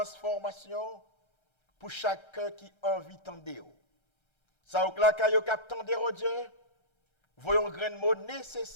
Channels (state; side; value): late; right; 1.3 ms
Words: pour chacun qui a envie d'entendre. Ça ou là kayo k'ap tande au Dieu, voyons grain de mots